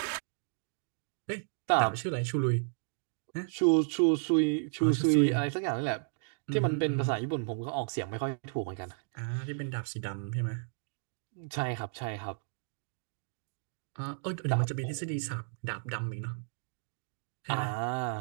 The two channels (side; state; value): left; silent; digital silence